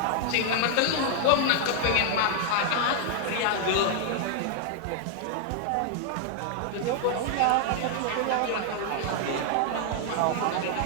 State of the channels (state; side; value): different; both; correlation 0.00